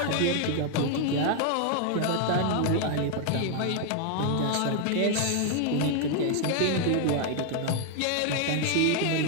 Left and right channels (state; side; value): different; both; correlation 0.00